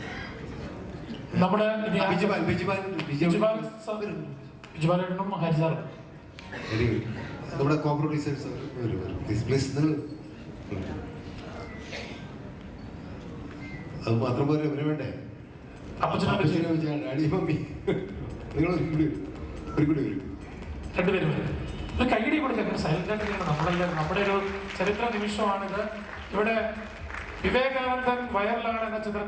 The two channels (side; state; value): both; identical; correlation 1.00